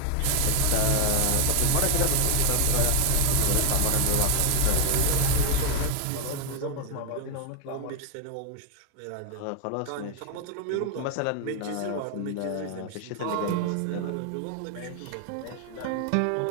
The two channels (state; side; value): different; both; correlation 0.01